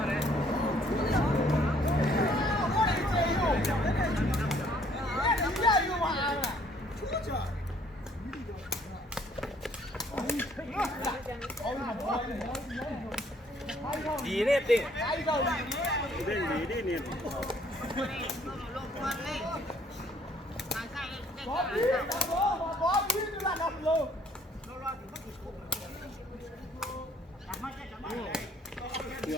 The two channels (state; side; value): normal; both; correlation 0.62